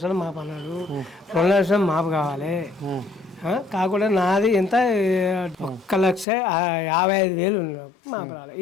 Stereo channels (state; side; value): drops out; right; at 6.2 s